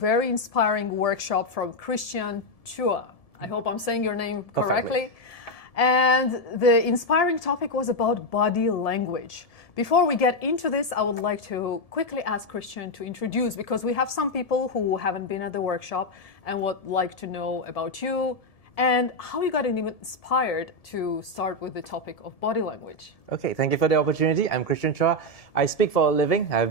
inspiring workshop from Christian Chua. I hope I'm saying your name correctly. And the inspiring topic was about body language. Before we get into this, I would like to quickly ask Christian to introduce, because we have some people who haven't been at the workshop and would like to know about you and how you got even inspired to start with the topic of body language. Okay, thank you for the opportunity. I'm Christian Chua. I speak for a living. I've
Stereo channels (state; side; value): late; right; 1.7 ms